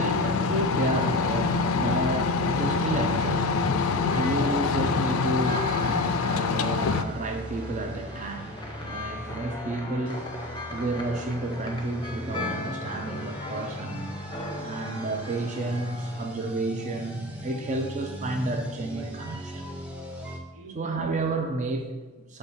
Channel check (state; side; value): normal; both; correlation 0.29